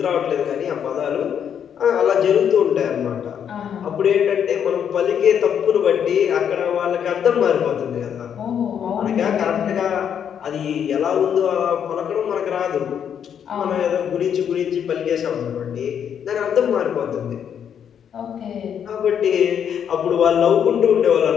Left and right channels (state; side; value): quieter; right; 8.4 dB